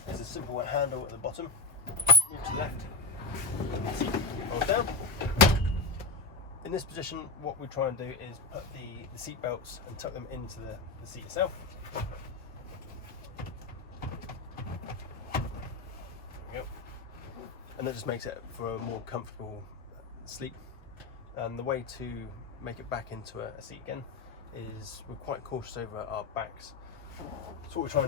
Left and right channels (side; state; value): right; quieter; 3.4 dB